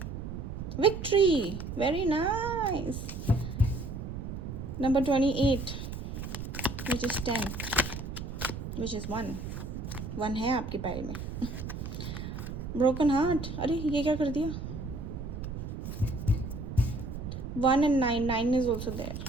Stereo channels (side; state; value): right; noise; rumble, 7 dB below the sound